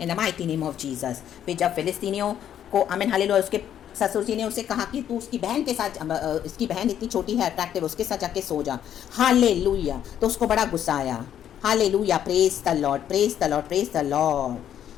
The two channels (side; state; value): right; quieter; 10.1 dB